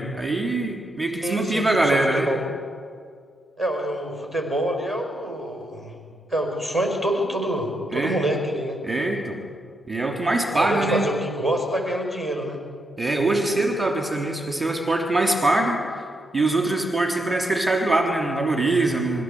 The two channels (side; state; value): both; normal; correlation 0.81